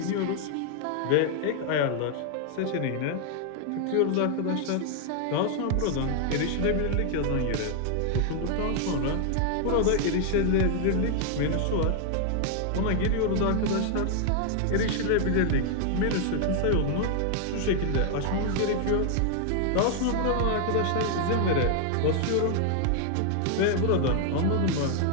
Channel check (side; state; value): both; different; correlation 0.00